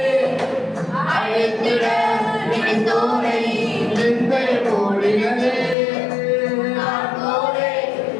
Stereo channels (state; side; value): drops out; right; at 5.8 s